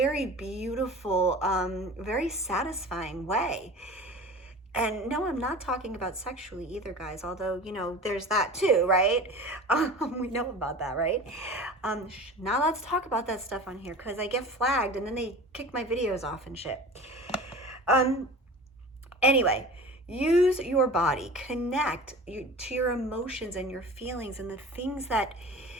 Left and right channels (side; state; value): both; normal; correlation 0.37